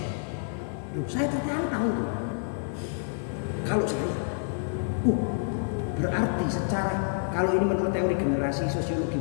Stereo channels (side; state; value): right; silent; digital silence